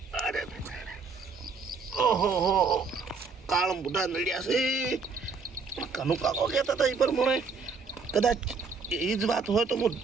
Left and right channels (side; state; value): left; quieter; 4.8 dB